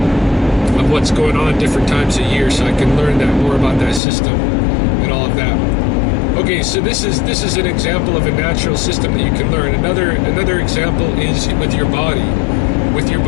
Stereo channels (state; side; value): drops out; right; at 4.0 s